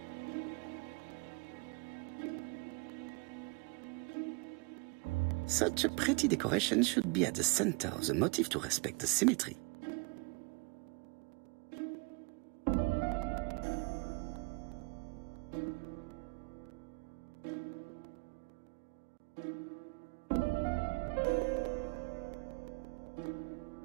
Such a pretty decoration should be at the center of the motif to respect the symmetry.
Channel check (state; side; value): quieter; left; 30.1 dB